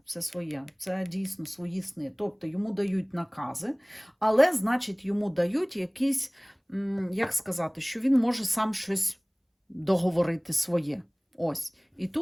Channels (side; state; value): both; identical; correlation 1.00